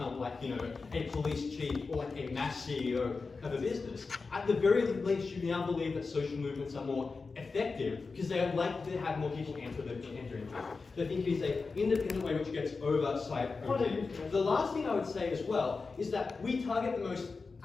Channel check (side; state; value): right; quieter; 4.3 dB